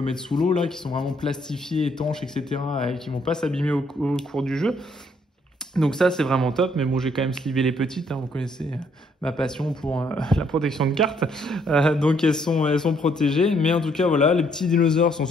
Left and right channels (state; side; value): normal; both; correlation 0.68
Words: mettre sous l'eau là, qui sont vraiment plastifiées, étanches, etc. et qui vont pas s'abîmer au cours du jeu. Donc ça, c'est vraiment top, mais bon, j'ai quand même slivé les petites, hein, vous connaissez ma passion pour la protection de cartes. Donc elles sont protégées, mais en tout cas, voilà, les petits dinosaures sont